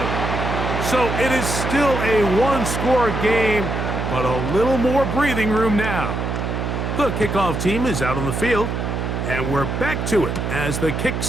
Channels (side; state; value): right; noise; hum, 2 dB below the sound